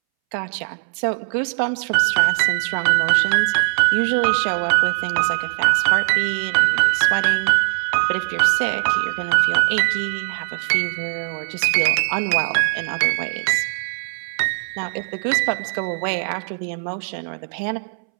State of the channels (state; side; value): silent; left; 64 dB below the other